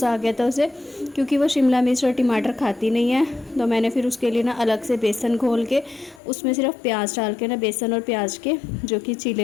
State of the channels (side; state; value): right; drops out; at 6.2 s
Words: आ गया था उसे, क्योंकि वो शिमला मिर्च और टमाटर खाती नहीं है। तो मैंने फिर उसके लिए ना अलग से बेसन घोल के उसमें सिर्फ प्याज डाल के ना बेसन और प्याज के जो कि चीले